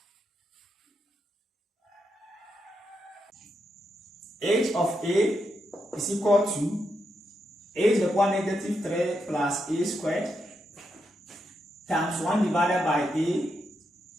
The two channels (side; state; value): both; normal; correlation 0.83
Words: H of A is equal to a to the power negative 3 plus a squared times 1 divided by a